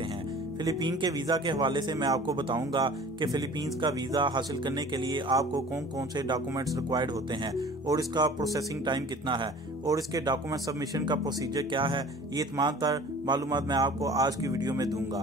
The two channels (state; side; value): normal; both; correlation 0.45